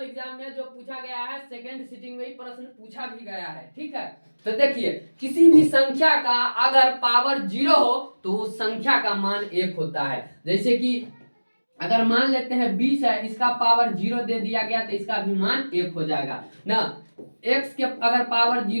एग्जाम में जो पूछा गया है, सेकेंड सिटिंग में ही प्रश्न पूछा भी गया है। ठीक है, तो देखिए किसी भी संख्या का अगर पावर 0 हो तो उस संख्या का मान 1 होता है। जैसे कि अगर मान लेते हैं 20 है, इसका पावर 0 दे दिया गया तो इसका भी मान 1 हो जाएगा ना। x के अगर पावर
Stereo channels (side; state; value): both; inverted; correlation -1.00